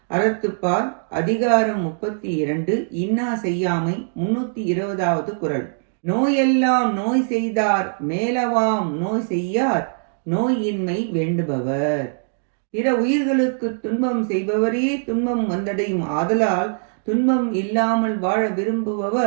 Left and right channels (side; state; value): left; silent; digital silence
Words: அறத்துப்பால் அதிகாரம் 32 இன்னா செய்யாமை 320வது குறள். நோயெல்லாம் நோய் செய்தார் மேலவாம் நோய் செய்யார் நோயின்மை வேண்டுபவர். பிற உயிர்களுக்கு துன்பம் செய்பவரே துன்பம் வந்தடையும் ஆதலால் துன்பம் இல்லாமல் வாழ